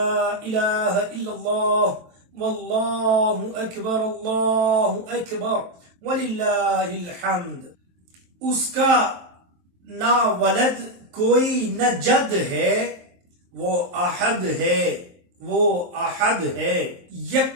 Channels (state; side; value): late; left; 23 ms